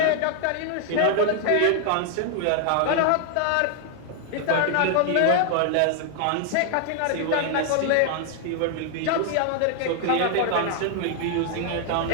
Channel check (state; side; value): different; both; correlation 0.00